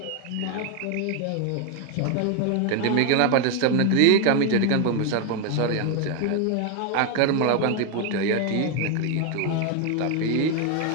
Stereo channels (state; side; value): different; both; correlation 0.01